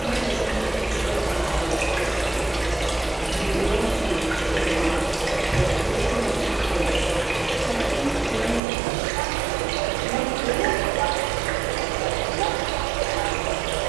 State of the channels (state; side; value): drops out; left; at 8.6 s